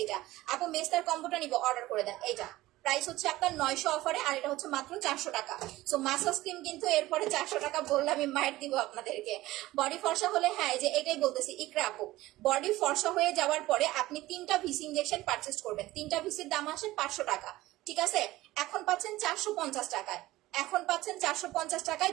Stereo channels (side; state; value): left; quieter; 17.3 dB